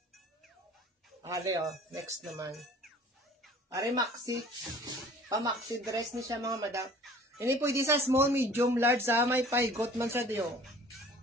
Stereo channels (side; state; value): both; normal; correlation 0.49